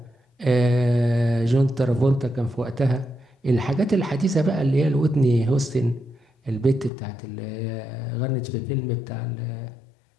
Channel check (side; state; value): right; drops out; at 6.9 s